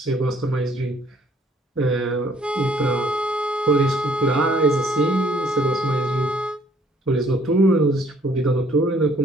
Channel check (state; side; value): normal; both; correlation 0.62